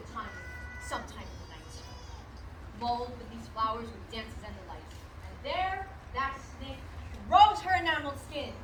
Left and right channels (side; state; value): both; identical; correlation 1.00